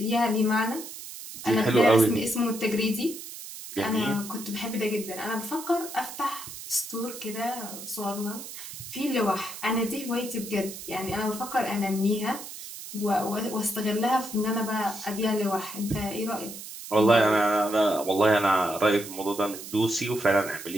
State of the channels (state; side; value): noise; right; hiss, 11 dB below the sound